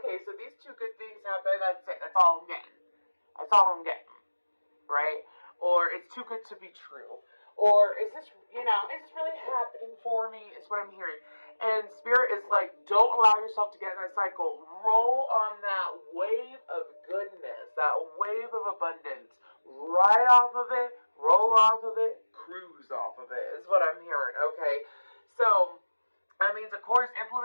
so these two good things happen, that's it, that's all I'm getting. That's all I'm getting, right? Or it's too good to be true. Or is this, is this really happening for me? Is what I'm hearing. And Spirit is like, don't allow yourself to get in that cycle. Roll on that wave of goodness, that wave of abundance. Ride off of it, roll off of it, cruise off of it, is what I'm hearing, okay? So, that means, of course,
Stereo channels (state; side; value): inverted; both; correlation -1.00